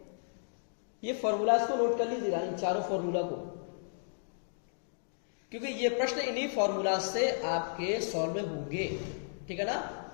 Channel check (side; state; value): right; silent; digital silence